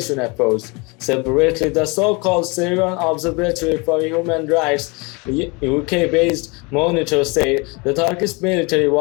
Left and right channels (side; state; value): right; quieter; 28.5 dB